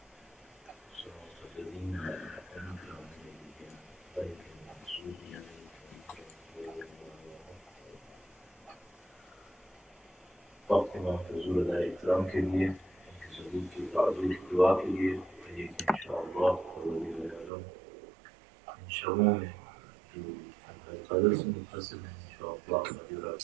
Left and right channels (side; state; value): left; drops out; at 17.5 s